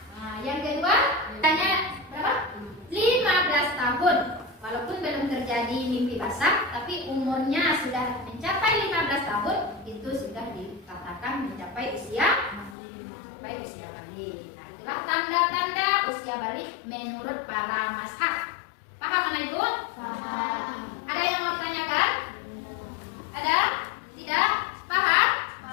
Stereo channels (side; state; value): right; drops out; at 12.8 s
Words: Nah, yang kedua, tanya berapa? 15 tahun. Walaupun belum terjadi mimpi basah, tapi umurnya sudah mencapai 15 tahun, itu sudah dikatakan mencapai usia balik. Nah, itulah tanda-tanda usia balik menurut para mazhab. Paham anak ibu? Ada yang mau ditanyakan? Ada? Tidak? Paham?